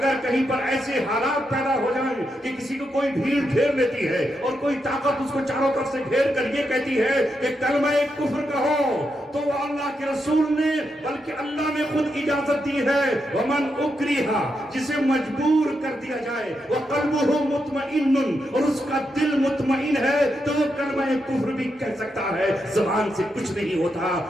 کہیں پر ایسے حالات پیدا ہو جائیں کہ کسی کو کوئی بھیڑ گھیر لیتی ہے اور کوئی طاقت اس کو چاروں طرف سے گھیر کر یہ کہتی ہے کہ کلمہ کفر کہو، تو وہ اللہ کے رسول نے بلکہ اللہ نے خود اجازت دی ہے، ومن اکرہا، جسے مجبور کر دیا جائے، وقلبہ مطمئن، اور اس کا دل مطمئن ہے، تو وہ کلمہ کفر بھی کہہ سکتا ہے، زبان سے کچھ نہیں ہوتا،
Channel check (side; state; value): both; normal; correlation 0.83